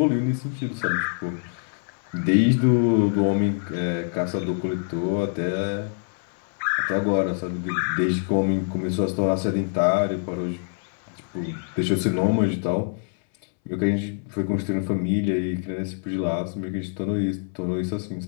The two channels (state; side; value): silent; right; 62 dB below the other